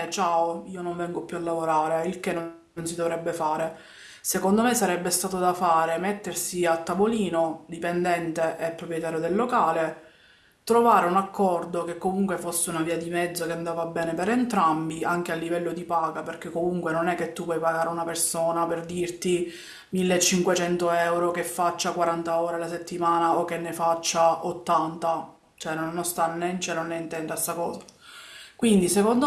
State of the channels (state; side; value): identical; both; correlation 1.00